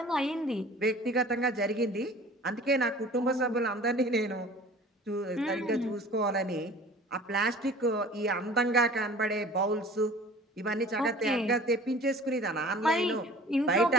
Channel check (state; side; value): normal; both; correlation 0.45